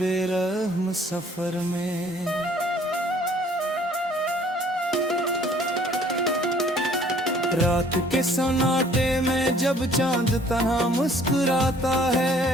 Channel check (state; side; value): normal; both; correlation 0.57